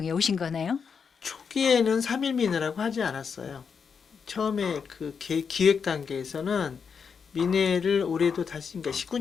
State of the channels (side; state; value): right; quieter; 6.2 dB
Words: 오신 거네요? 초기에는 3.1 민회라고 하지 않았어요. 처음에 그 기획 단계에서는 민회를 올해도 다시, 그러니까